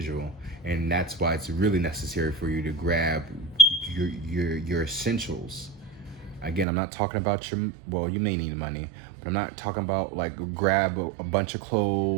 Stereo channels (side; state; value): left; drops out; at 6.7 s